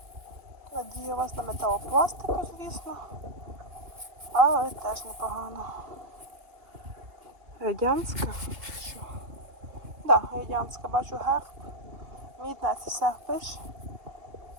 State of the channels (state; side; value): late; left; 2.8 ms